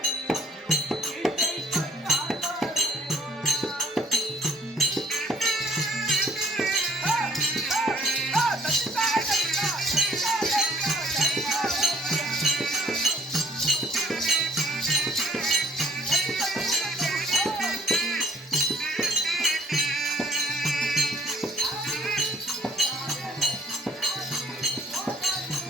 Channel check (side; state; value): both; normal; correlation 0.59